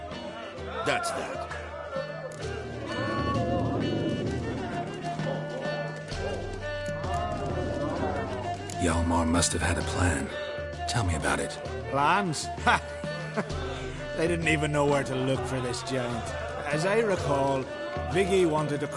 That's that. Hjalmar must have had a plan. Tell me about it. Plans? Ha! They didn't even know where to look for this giant. As I recall, Viggy wanted to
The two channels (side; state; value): both; identical; correlation 1.00